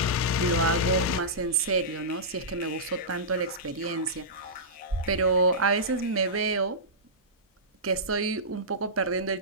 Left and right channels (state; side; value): normal; both; correlation -0.16